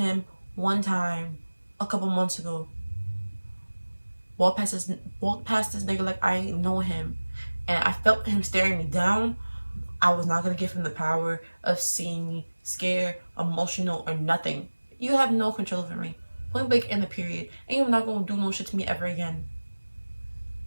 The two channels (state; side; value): inverted; both; correlation -1.00